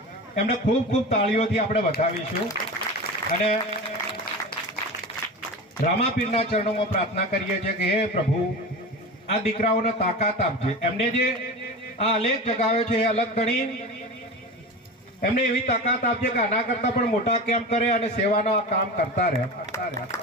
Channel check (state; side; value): normal; both; correlation 0.28